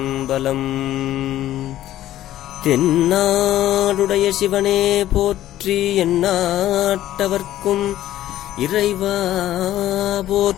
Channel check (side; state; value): right; quieter; 13.4 dB